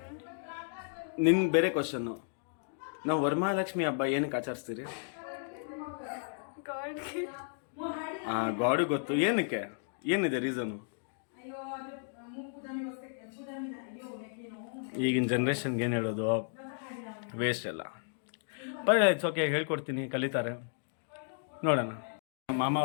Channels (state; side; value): silent; right; digital silence